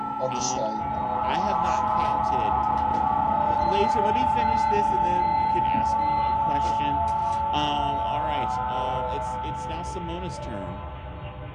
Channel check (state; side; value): identical; both; correlation 1.00